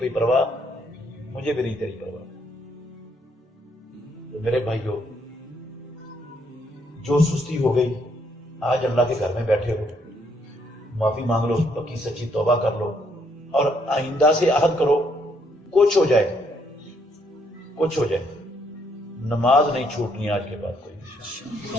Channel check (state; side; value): normal; both; correlation 0.71